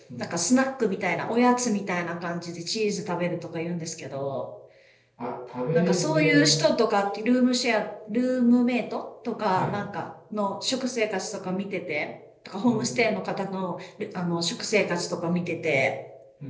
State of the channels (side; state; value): both; identical; correlation 1.00